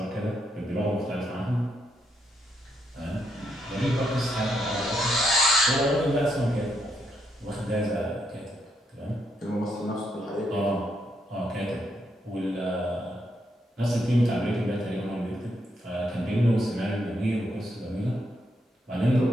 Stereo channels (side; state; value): both; normal; correlation 0.78